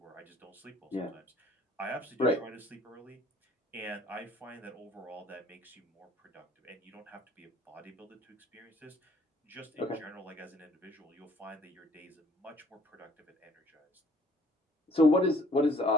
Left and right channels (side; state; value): both; normal; correlation 0.58